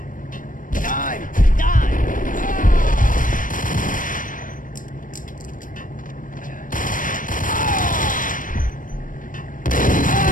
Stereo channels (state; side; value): late; right; 0.39 ms